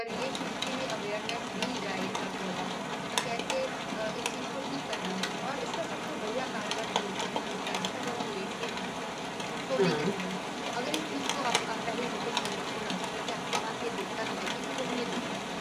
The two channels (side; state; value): both; identical; correlation 1.00